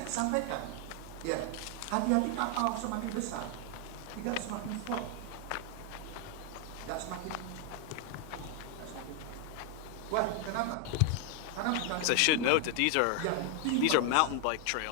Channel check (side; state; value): both; different; correlation 0.00